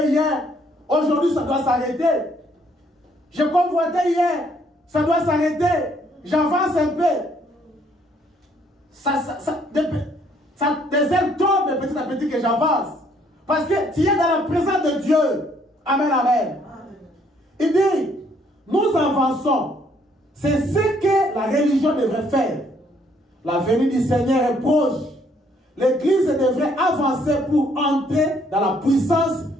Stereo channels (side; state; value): both; normal; correlation 0.66